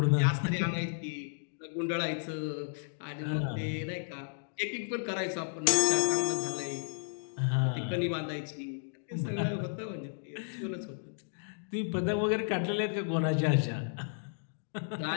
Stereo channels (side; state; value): right; silent; digital silence